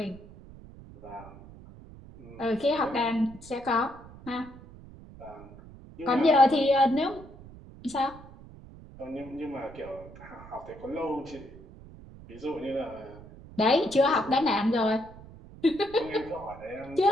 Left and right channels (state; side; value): noise; right; rumble, 18 dB below the sound